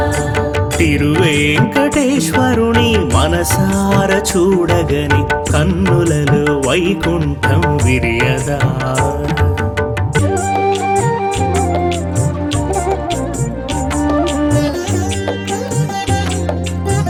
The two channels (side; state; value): both; identical; correlation 1.00